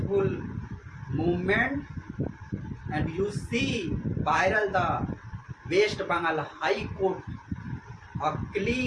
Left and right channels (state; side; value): identical; both; correlation 1.00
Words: movement. And you see viral the West Bengal High Court, a